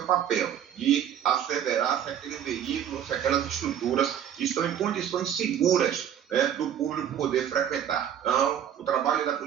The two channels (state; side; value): quieter; left; 9.6 dB